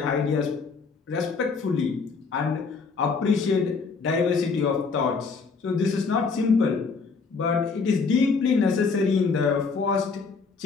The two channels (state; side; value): quieter; right; 4.8 dB